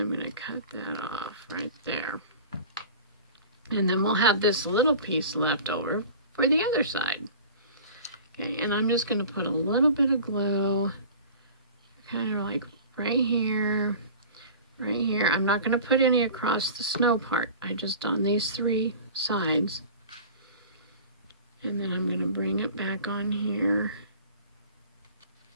I'm going to cut that off right there. And then we'll have this little piece left over for the other side. Okay, and I'm just going to put a little bit of glue, kind of like right here, right here. I'm not going to put any across the snow part. I just on these three sides. And then I'm going to bring it back on here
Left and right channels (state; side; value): inverted; both; correlation -0.40